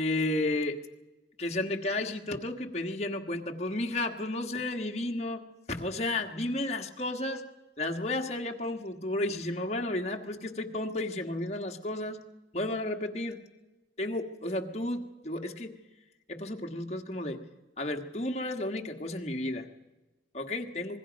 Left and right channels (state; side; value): normal; both; correlation 0.40